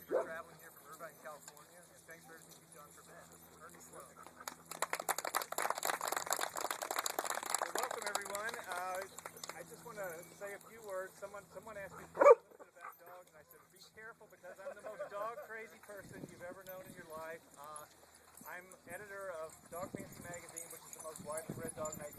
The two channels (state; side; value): identical; both; correlation 1.00